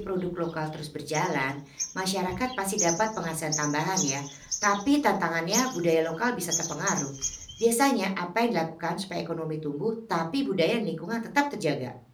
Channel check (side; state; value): both; identical; correlation 1.00